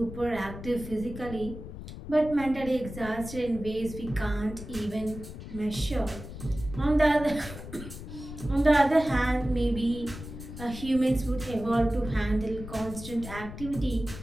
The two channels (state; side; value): noise; left; rumble, 11 dB below the sound